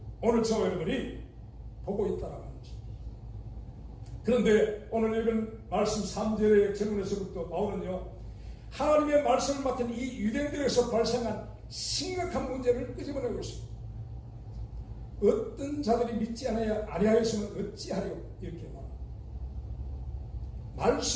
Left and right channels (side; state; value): both; identical; correlation 1.00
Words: 오늘 저와 여러분이 보고 있다는 것입니다. 그런데 오늘 읽은 말씀 3절의 질문에서부터 바울은요, 하나님의 말씀을 맡은 이 유대인들에서 발생한 심각한 문제를 끄집어내고 있습니다. 어떤 자들이 믿지 아니하였으면 어찌하려 이렇게 말합니다.